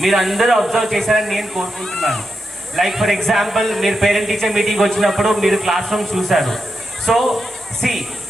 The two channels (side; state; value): both; normal; correlation 0.87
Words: మీరు అందరూ అబ్జర్వ్ చేశారని నేను కోరుకుంటున్నాను. లైక్ ఫర్ ఎగ్జాంపుల్, మీరు పేరెంట్ టీచర్ మీటింగ్ వచ్చినప్పుడు మీరు క్లాస్ రూమ్స్ చూశారు. So see